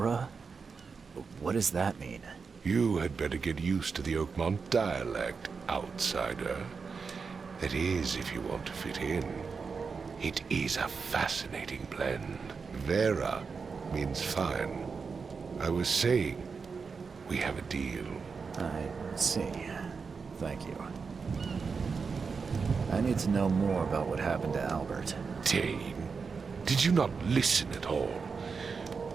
What does that mean? You had better get used to the Oakmont dialect, outsider. That is, if you want to fit in. It is a fascinating blend. Vera means fine. I was saying, we have a deal. I see. Thank you. I need to know more about what happened to Albert. Dane, did you not listen at all?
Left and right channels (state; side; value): quieter; left; 5.2 dB